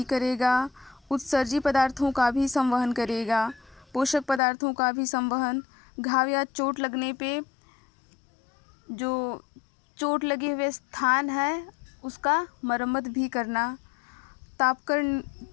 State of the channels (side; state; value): right; drops out; at 4.4 s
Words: करेगा, उत्सर्जी पदार्थों का भी संवहन करेगा, पोषक पदार्थों का भी संवहन, घाव या चोट लगने पे जो चोट लगे हुए स्थान है उसका मरम्मत भी करना,